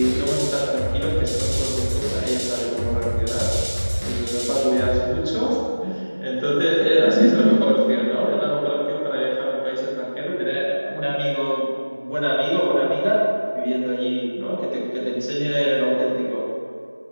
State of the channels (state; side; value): inverted; both; correlation -1.00